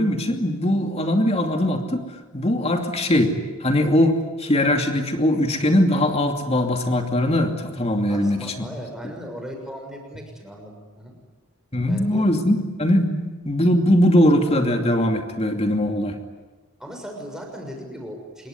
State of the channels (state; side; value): normal; both; correlation 0.69